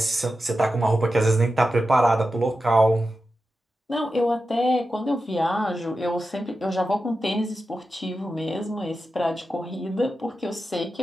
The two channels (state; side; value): normal; both; correlation 0.91